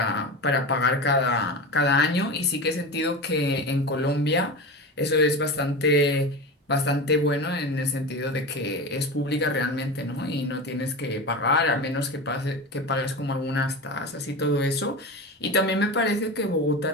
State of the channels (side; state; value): both; normal; correlation 0.25